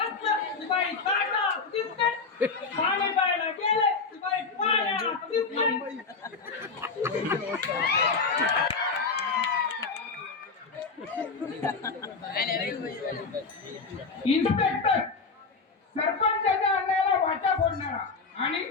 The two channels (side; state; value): right; quieter; 4.5 dB